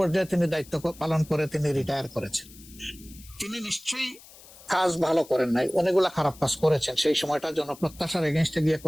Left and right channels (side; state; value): left; noise; hiss, 21 dB below the sound